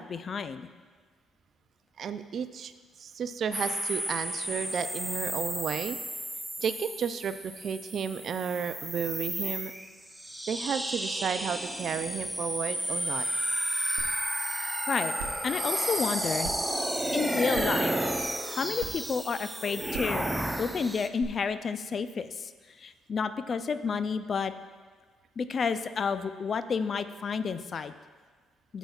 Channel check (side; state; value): both; normal; correlation 0.82